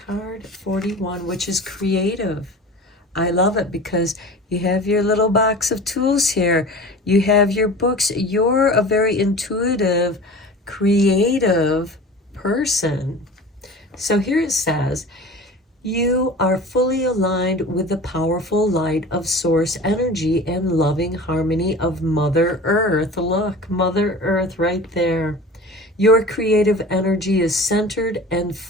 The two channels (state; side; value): normal; both; correlation 0.37